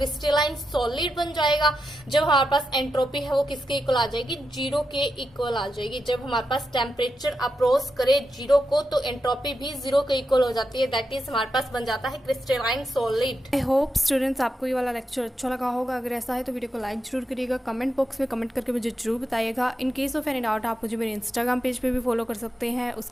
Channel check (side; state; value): both; normal; correlation 0.87